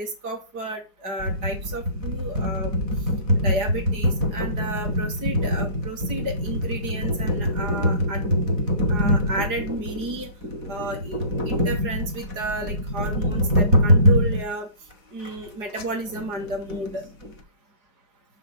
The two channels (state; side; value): late; left; 4.9 ms